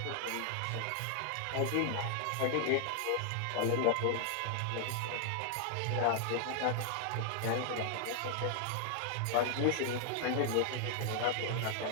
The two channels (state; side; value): different; both; correlation 0.00